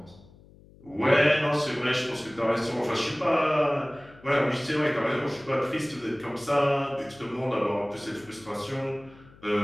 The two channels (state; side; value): noise; left; hum, 24 dB below the sound